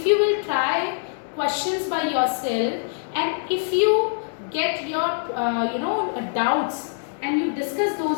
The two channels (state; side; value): silent; right; digital silence